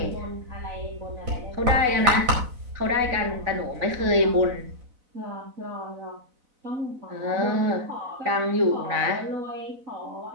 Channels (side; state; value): left; late; 4.0 ms